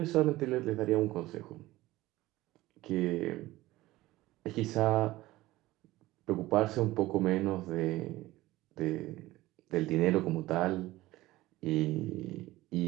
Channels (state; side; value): quieter; left; 17.7 dB